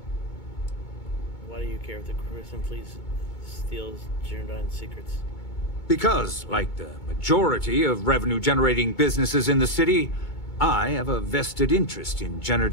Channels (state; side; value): late; right; 2.2 ms